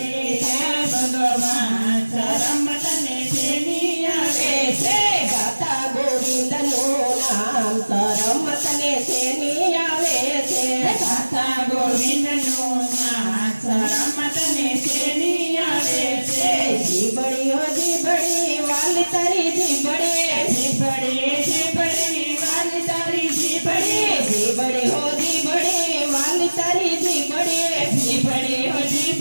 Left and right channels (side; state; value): both; inverted; correlation -1.00